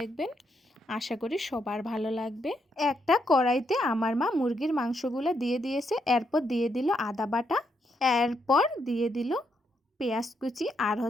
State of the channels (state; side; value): normal; both; correlation 0.78